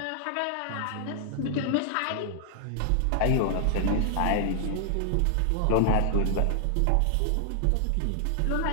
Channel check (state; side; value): different; both; correlation 0.00